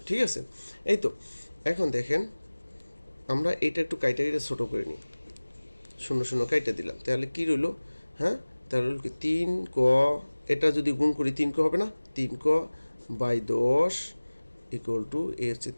ঠিক আছে। এই তো এখন দেখেন আমরা এটা একটু কাইটা ছোটো করে নিই, 0 কাইটা দিলাম, তাহলে কী রইল, হ্যাঁ। তাহলে রইল কি 3ক, এটা যদি গুণ করি 3ক হবে না, 3ক/10 ইকুয়াল টু এ হচ্ছে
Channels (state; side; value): inverted; both; correlation -1.00